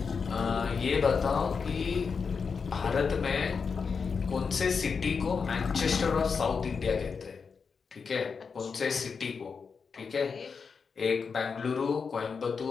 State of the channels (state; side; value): quieter; right; 5.5 dB